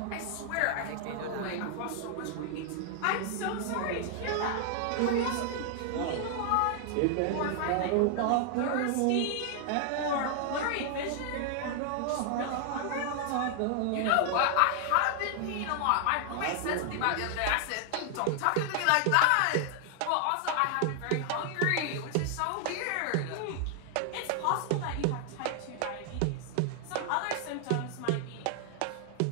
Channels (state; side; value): different; both; correlation 0.00